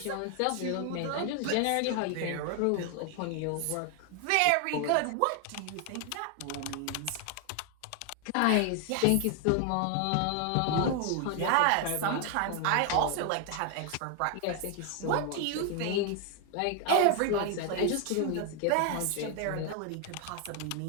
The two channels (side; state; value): both; different; correlation 0.00